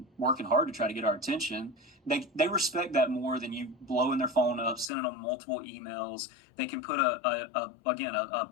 working hard to try to get our attention. They respect that more than you blowing their phone up, sending them multiple emails. They can put a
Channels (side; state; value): right; drops out; at 4.9 s